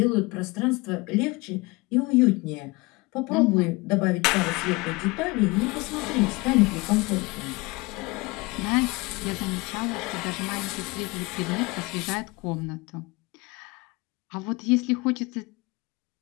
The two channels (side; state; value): right; quieter; 24.3 dB